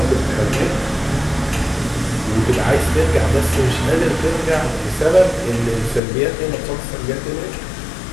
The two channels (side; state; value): right; drops out; at 6.0 s